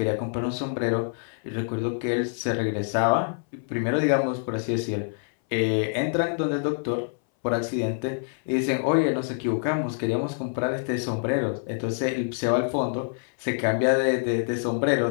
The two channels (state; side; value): silent; right; 61 dB below the other